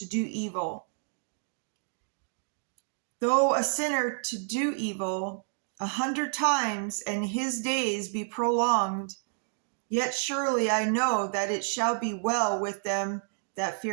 do evil. Though a sinner to do evil 100 times, and his days be prolonged, yet surely I know that it shall be well with them that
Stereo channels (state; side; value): silent; left; 58 dB below the other